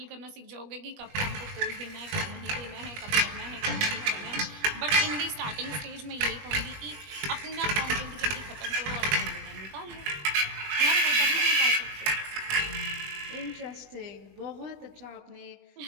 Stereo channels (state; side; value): late; left; 20 ms